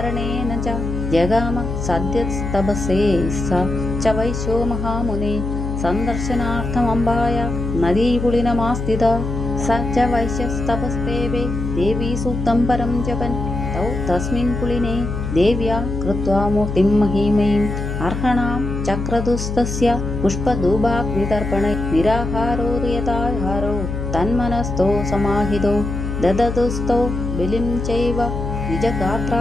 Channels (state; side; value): noise; left; hum, 4 dB below the sound